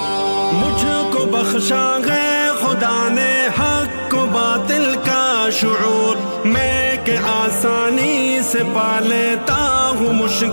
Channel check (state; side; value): inverted; both; correlation -1.00